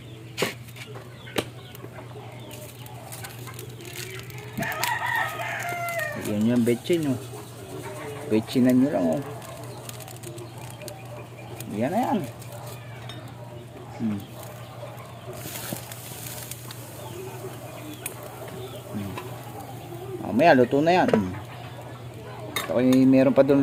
Yan yung betchin, oh. Betchinan nyo lang, oh. Yan na yan. Mamaya luto na yan. Okay, meron pa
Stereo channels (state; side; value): identical; both; correlation 1.00